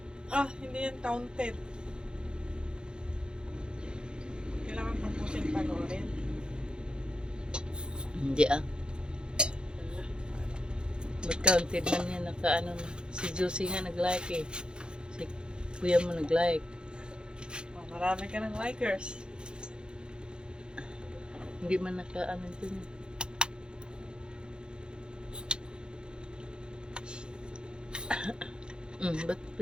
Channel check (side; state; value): left; late; 0.049 ms